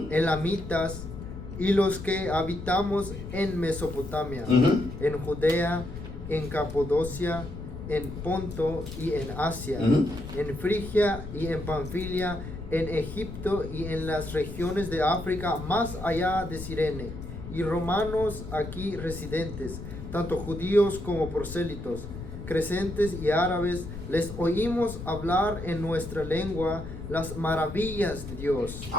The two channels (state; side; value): noise; left; rumble, 10 dB below the sound